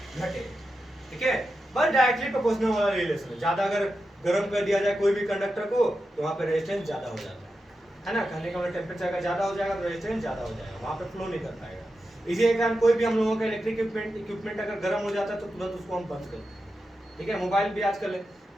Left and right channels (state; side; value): normal; both; correlation 0.89